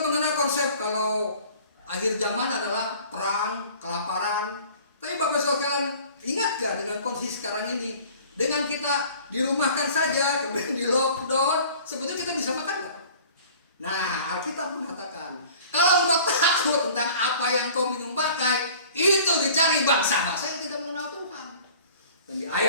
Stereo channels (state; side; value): inverted; both; correlation -0.47